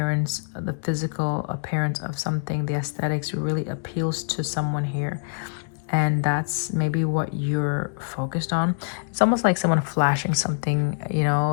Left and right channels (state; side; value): silent; right; digital silence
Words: the physical appearance of something, the aesthetics really appeals to someone here. And that's maybe what you're focused on. It's almost like someone flashing something, you